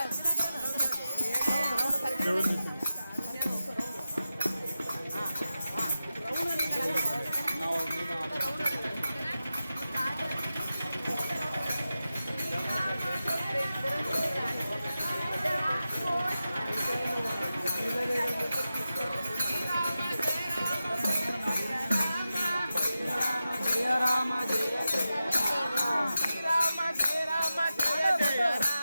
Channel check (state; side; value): inverted; both; correlation -0.92